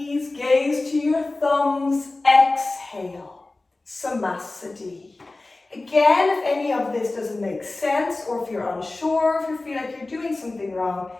gaze to your thumbs. Exhale, samasthiti. Again, if any of this doesn't make sense, or if you're unsure, if you feel like you're doing something wrong,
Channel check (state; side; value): quieter; right; 3.1 dB